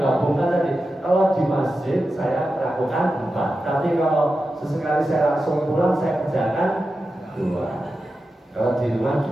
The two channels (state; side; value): normal; both; correlation 0.91